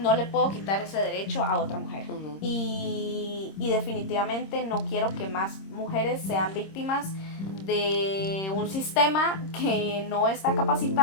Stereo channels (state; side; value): late; right; 26 ms